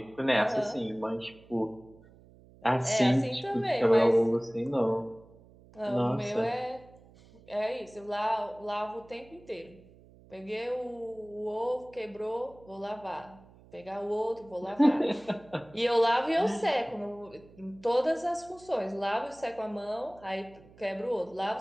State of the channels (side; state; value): right; noise; hum, 24 dB below the sound